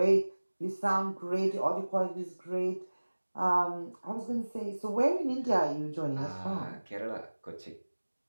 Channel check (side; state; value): both; inverted; correlation -1.00